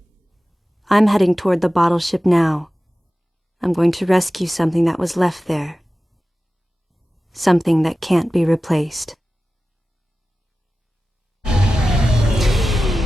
I'm heading toward the bottle ship now. I'm going to rescue something that was left there. Something that can't be replaced.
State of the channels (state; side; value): normal; both; correlation 0.95